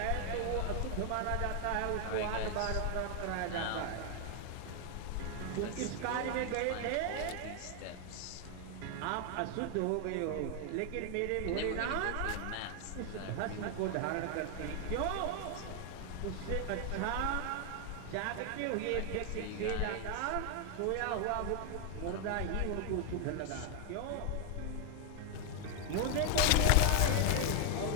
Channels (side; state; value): both; different; correlation 0.00